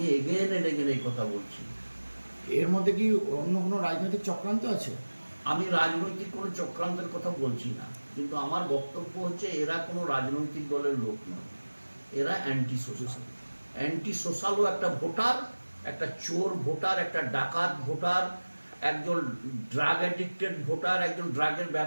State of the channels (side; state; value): both; inverted; correlation -1.00